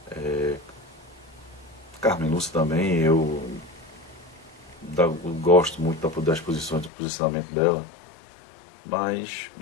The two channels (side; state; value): right; drops out; at 6.9 s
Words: Carmen Lúcia também. Eu gosto muito das posições, do posicionamento dela, mas,